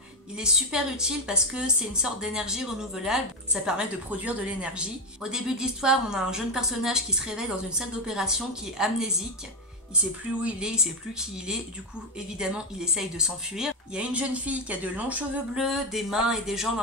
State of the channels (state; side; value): normal; both; correlation 0.07